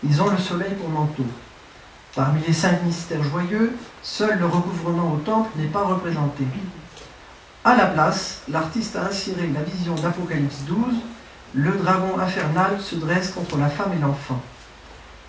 ils ont le soleil pour manteau. Parmi les 5 mystères joyeux, seul le recouvrement au temple n'est pas représenté. À la place, l'artiste a inséré la vision d'Apocalypse 12, le dragon infernal se dresse contre la femme et l'enfant.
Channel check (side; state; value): both; identical; correlation 1.00